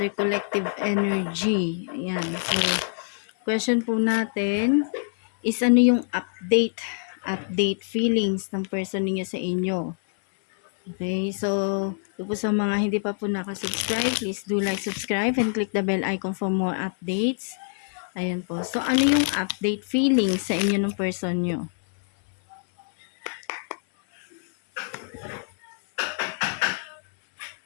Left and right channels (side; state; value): right; silent; 61 dB below the other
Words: collective energy. Ayan, so question po natin is ano yung update feelings ng person ninyo sa inyo. Okay, so ito po sa mga hindi pa po nakasubscribe, please do like, subscribe, and click the bell icon for more updates. Ayan po, so ano yung update feelings sa inyo ng person nyo?